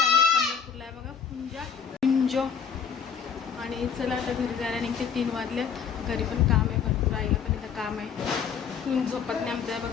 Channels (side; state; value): right; quieter; 7.0 dB